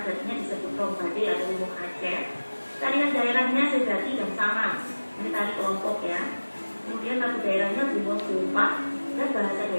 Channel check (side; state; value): both; inverted; correlation -1.00